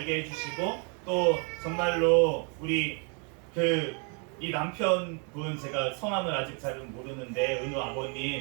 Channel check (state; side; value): quieter; left; 37.2 dB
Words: 해주시고 또 정말로 우리 이 남편분 제가 성함을 아직 잘은 모르는데 은우